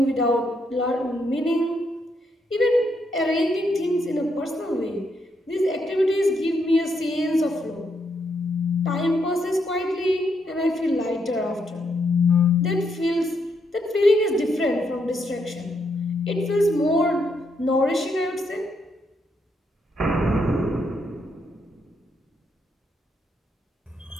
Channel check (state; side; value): normal; both; correlation 0.77